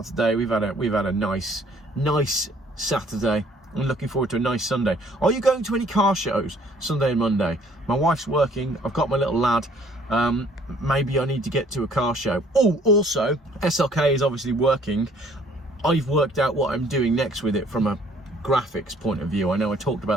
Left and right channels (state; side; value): normal; both; correlation 0.59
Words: today. We've had a nice Saturday. I'm looking forward to a nice Sunday. Are you going to any car shows Sunday and Monday? My wife's working. I've got my little lad. Maybe I need to get to a car show. Oh, also, SLK is obviously working. I've worked out what I'm doing next with it from a graphics point of view. I know I talked